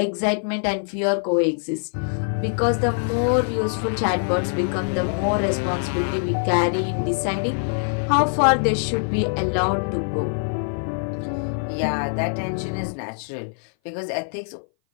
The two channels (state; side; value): silent; right; 58 dB below the other